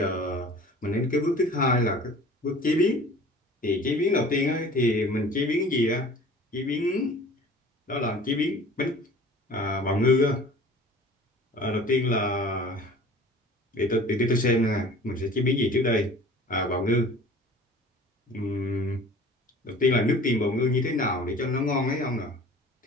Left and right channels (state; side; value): normal; both; correlation 0.44